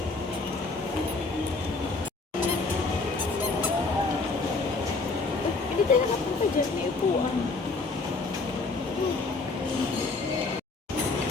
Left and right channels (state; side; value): quieter; right; 3.8 dB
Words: Hindi tayo nakapunta dyan. May upuan.